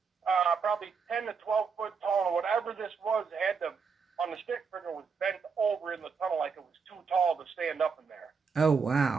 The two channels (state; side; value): quieter; left; 5.5 dB